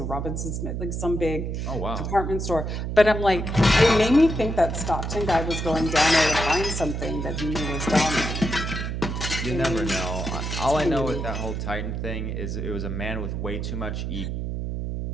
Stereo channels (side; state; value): right; noise; hum, 3 dB below the sound